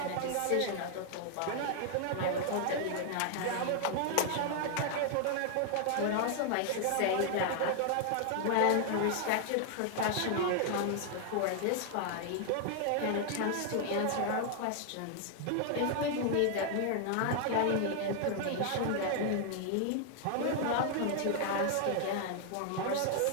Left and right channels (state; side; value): different; both; correlation 0.00